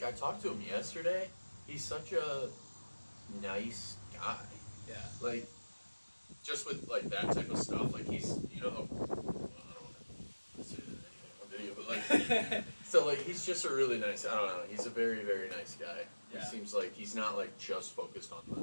I talked to him yesterday. He's such a nice guy. Yeah. Just with that type of stuff. He's I don't want to say anything on video, but so he's just a really nice. I don't know. He's a very very nice guy. Yeah. He seems like he's not just focused on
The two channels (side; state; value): both; inverted; correlation -1.00